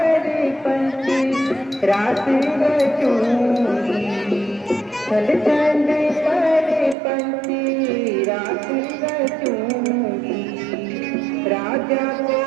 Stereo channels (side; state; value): left; drops out; at 7.0 s